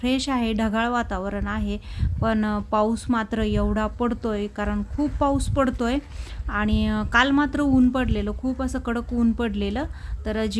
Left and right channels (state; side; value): identical; both; correlation 1.00